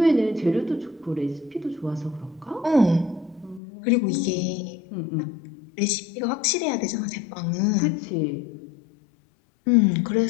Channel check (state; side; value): drops out; right; at 3.6 s